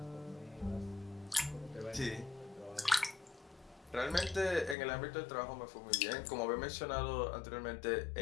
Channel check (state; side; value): drops out; right; at 4.8 s